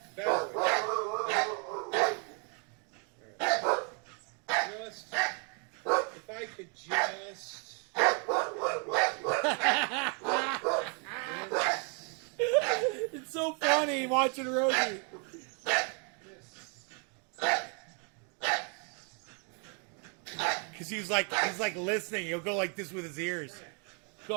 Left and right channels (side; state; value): left; quieter; 38.1 dB